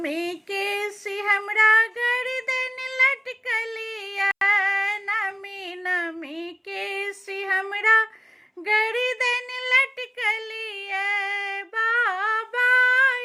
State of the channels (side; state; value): both; identical; correlation 1.00